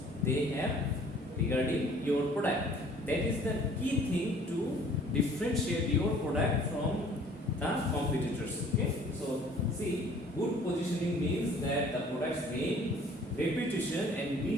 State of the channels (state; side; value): normal; both; correlation 0.53